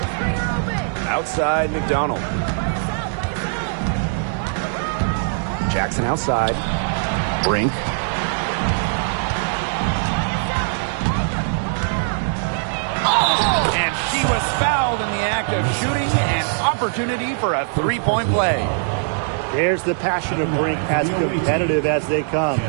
Outside, McDonald. Jackson outside. Brink. And she was fouled in the act of shooting. An opportunity for a 3-point play. There's the passion of Brink, as competitive as they come.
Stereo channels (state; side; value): silent; left; 61 dB below the other